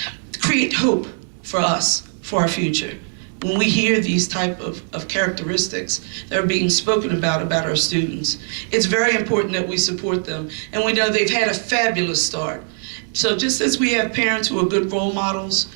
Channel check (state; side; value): silent; left; 56 dB below the other